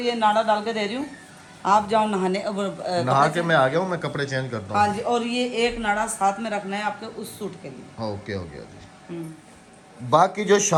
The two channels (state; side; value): identical; both; correlation 1.00